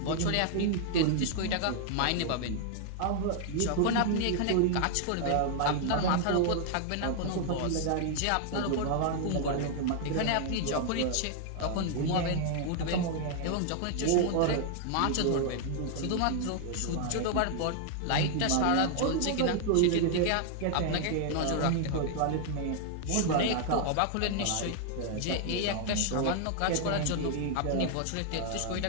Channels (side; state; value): both; different; correlation 0.00